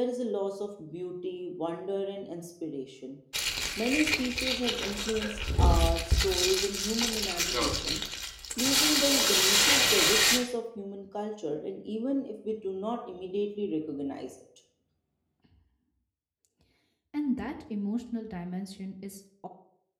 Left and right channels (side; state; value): both; identical; correlation 1.00